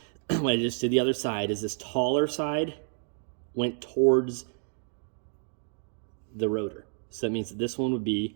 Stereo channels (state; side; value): silent; left; digital silence